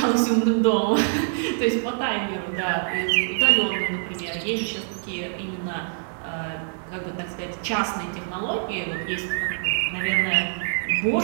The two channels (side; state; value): left; silent; 62 dB below the other